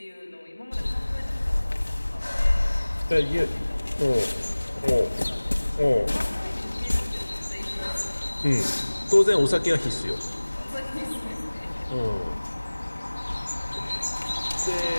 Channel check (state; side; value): inverted; both; correlation -1.00